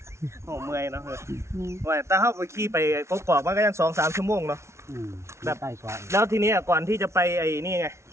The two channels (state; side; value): late; left; 0.13 ms